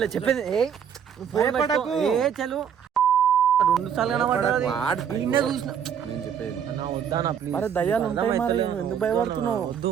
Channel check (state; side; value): quieter; left; 8.1 dB